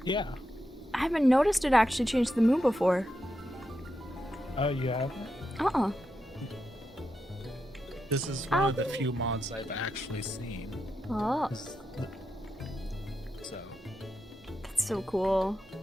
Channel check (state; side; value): normal; both; correlation 0.86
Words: Yeah. I haven't noticed it actually changed the moon before. Oh, you haven't? Uh-uh. This is one of the few mods I've actually seen. Oh. So. That's so cool.